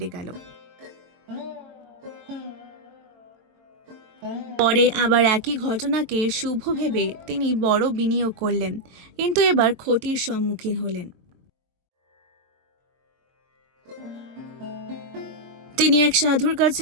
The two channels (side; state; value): left; late; 22 ms